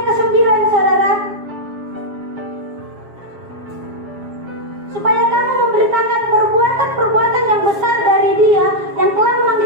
ke-9 saudara, supaya kamu memberitakan perbuatan-perbuatan yang besar dari Dia yang telah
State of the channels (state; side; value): late; left; 7.4 ms